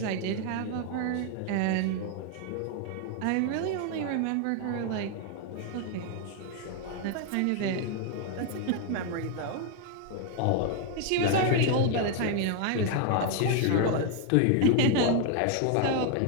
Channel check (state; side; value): different; both; correlation 0.00